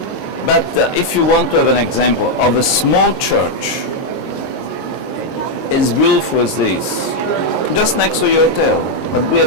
But if you want to have an example of a small church, as beautiful as this, just next to your hotel, but we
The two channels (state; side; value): late; right; 22 ms